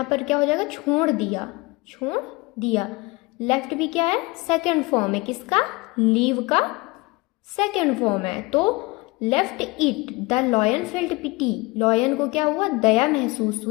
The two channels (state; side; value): quieter; right; 24.1 dB